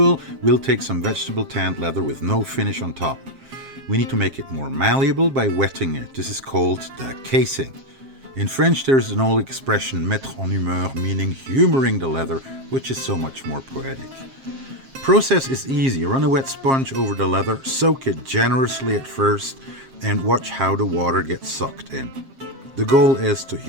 we'll take some vegetable tanned leather with no finish on top. We need to make it more malleable by wetting it. This is called the casing. In French, there's an old expression, mettre en humeur, meaning humoring the leather, which is so much more poetic. Process is easy. Run a wet sponge over the leather, soak it generously at first, and watch how the water gets sucked in. The goal is to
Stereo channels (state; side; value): late; left; 7.5 ms